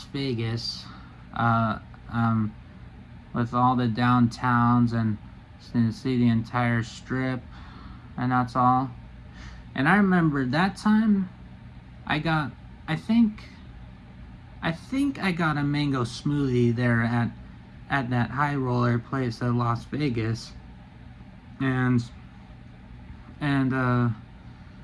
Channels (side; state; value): both; identical; correlation 1.00